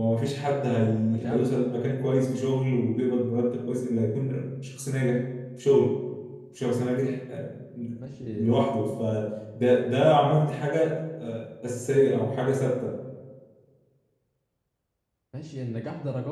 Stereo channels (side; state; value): both; identical; correlation 1.00